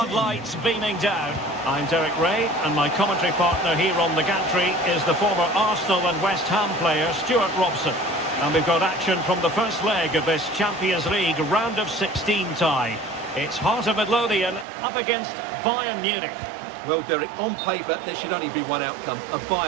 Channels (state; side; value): drops out; left; at 14.7 s